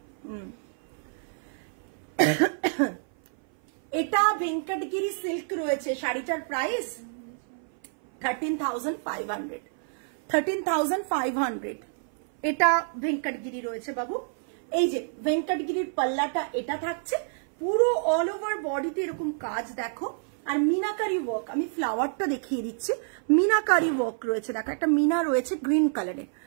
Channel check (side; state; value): left; silent; 57 dB below the other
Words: এটা ভেঙ্কটগিরি সিল্ক রয়েছে, শাড়িটার প্রাইস 13,500। 13,500 এটা ভেঙ্কটগিরি রয়েছে বাবু। এই যে ভেঙ্কটগিরির পাল্লাটা এটা থাকছে, পুরো অল ওভার বডিতে এরকম কাজ দেখো, আর মিনাকারি ওয়ার্ক। আমি ফ্লাওয়ারটা দেখিয়ে দিচ্ছি, মিনাকারি ওয়ার্ক রয়েছে, দেখো একটা মিনা রয়েছে গ্রিন কালারে,